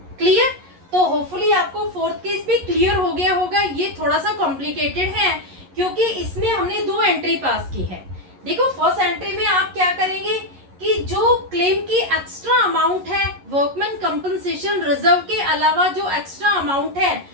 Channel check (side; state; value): left; late; 11 ms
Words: क्लियर? तो होपफुली आपको फोर्थ केस भी क्लियर हो गया होगा। ये थोड़ा सा कॉम्प्लिकेटेड है क्योंकि इसमें हमने 2 एंट्री पास की है। देखो फर्स्ट एंट्री में आप क्या करेंगे कि जो क्लेम की एक्स्ट्रा अमाउंट है वर्कमैन कंपनसेशन रिजर्व के अलावा जो एक्स्ट्रा अमाउंट है